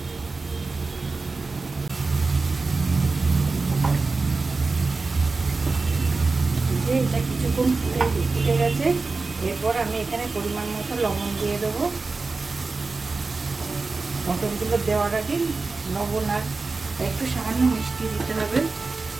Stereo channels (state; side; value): quieter; left; 3.9 dB